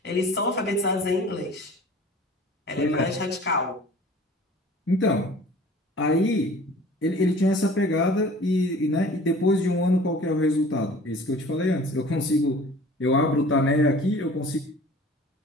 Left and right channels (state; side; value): normal; both; correlation 0.46